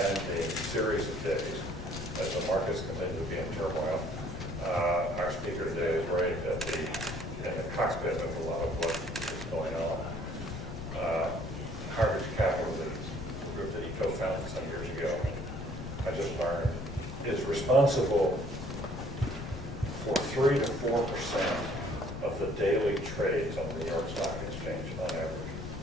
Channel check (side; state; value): left; noise; rumble, 8 dB below the sound